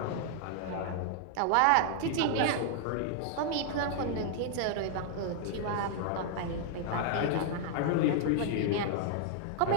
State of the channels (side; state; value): both; different; correlation 0.00